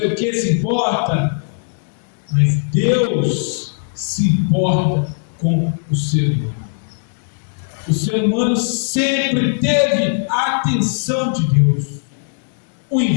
o que se importa, mas Deus se importa com o ser humano. O ser humano sempre teve a atenção de Deus. O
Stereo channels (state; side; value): silent; right; 67 dB below the other